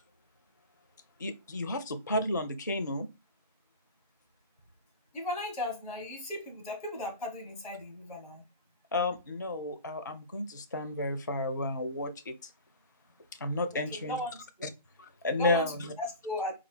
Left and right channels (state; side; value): inverted; both; correlation -0.36